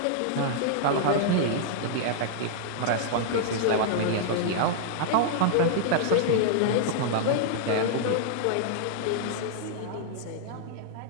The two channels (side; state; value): both; different; correlation -0.01